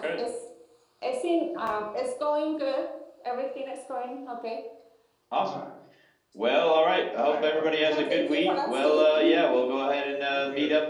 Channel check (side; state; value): both; identical; correlation 1.00